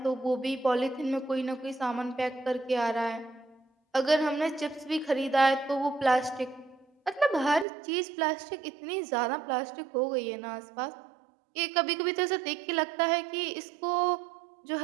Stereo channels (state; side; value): drops out; left; at 7.7 s